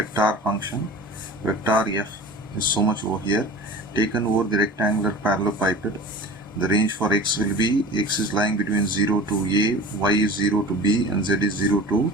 function. Vector f is so much over here, taken over the rectangular parallelepiped. The range for x will be, x is lying between 0 to a, y is 0 to b, and z is 0 to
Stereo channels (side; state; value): both; normal; correlation 0.38